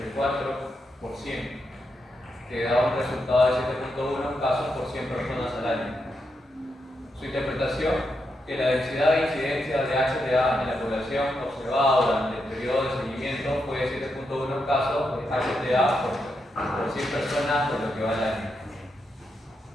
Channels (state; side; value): normal; both; correlation 0.83